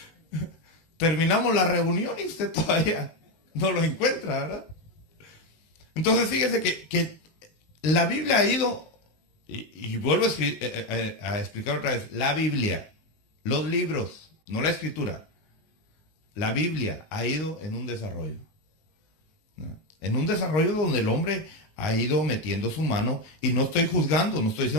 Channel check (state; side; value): late; right; 19 ms